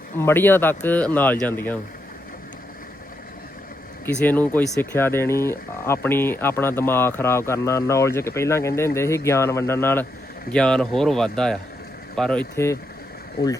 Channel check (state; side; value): normal; both; correlation 0.81